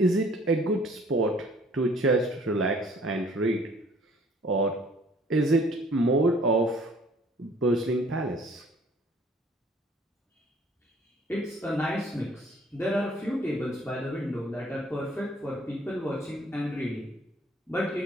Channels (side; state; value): both; normal; correlation 0.57